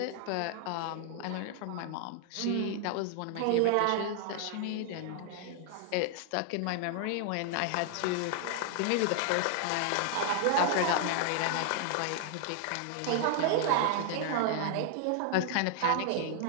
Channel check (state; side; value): different; both; correlation 0.00